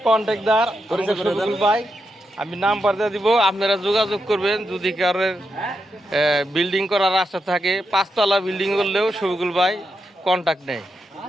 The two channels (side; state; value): both; normal; correlation 0.85